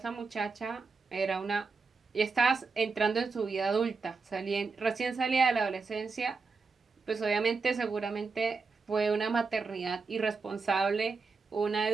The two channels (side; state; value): left; quieter; 4.5 dB